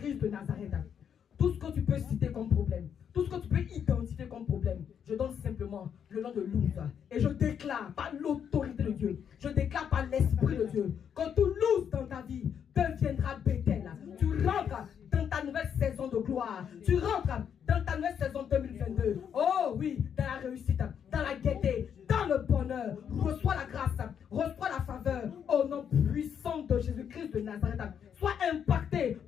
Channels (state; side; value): quieter; right; 8.1 dB